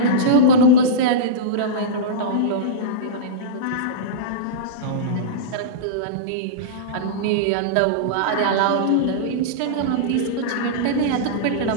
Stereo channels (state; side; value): different; both; correlation -0.05